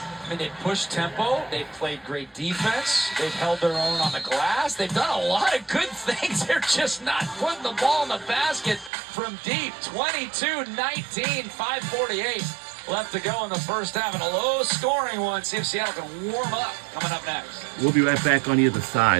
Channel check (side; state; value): left; drops out; at 8.9 s